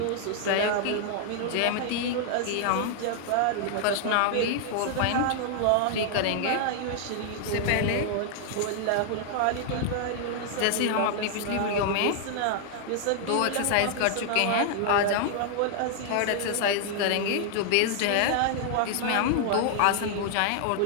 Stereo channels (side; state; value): both; different; correlation 0.00